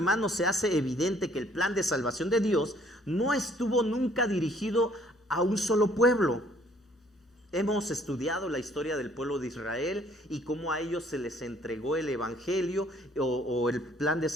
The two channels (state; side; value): normal; both; correlation 0.61